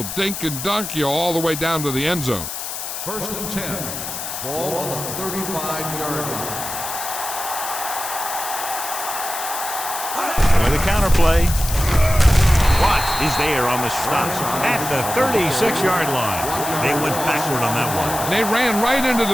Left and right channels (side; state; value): left; noise; hiss, 6 dB below the sound